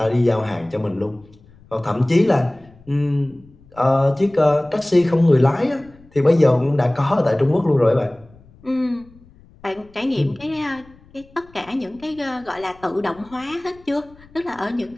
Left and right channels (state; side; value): noise; left; rumble, 26 dB below the sound